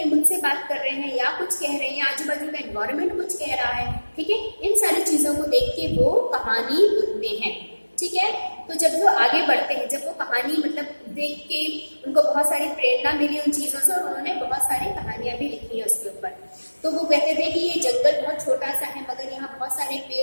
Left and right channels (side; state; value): both; inverted; correlation -1.00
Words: मुझसे बात कर रहे हैं, या कुछ कह रहे हैं, या आजू बाजू का एनवायरमेंट कुछ कह रहा है, ठीक है। इन सारी चीजों को देख के वो कहानी बुनते हैं, ठीक है। तो जब वो आगे बढ़ते हैं, जब वो कहानी मतलब देख के उनको बहुत सारी प्रेरणा मिली उन चीजों से, और उन्होंने बहुत सारी कहानियां भी लिखी है उसके ऊपर। तो वो कहते थे कि ये जंगल बहुत छोटा सा है, मगर यहाँ बहुत सारे